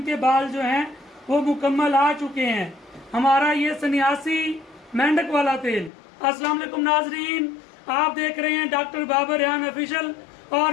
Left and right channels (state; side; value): drops out; right; at 5.9 s